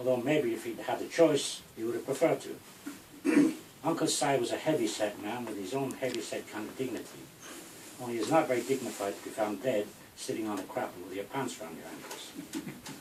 maybe if he'd had the choice, he would have preferred to. Uncle Si was a heavy-set man with his own heavy-set kind of dignity. Only he's not very dignified to be found dead sitting on a crapple with your pants round your ankles,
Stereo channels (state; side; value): identical; both; correlation 1.00